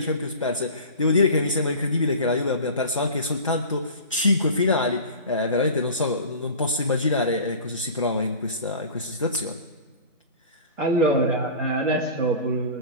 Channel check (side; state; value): both; inverted; correlation -0.37